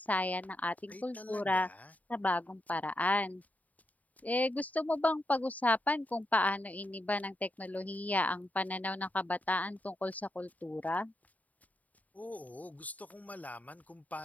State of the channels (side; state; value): right; late; 0.074 ms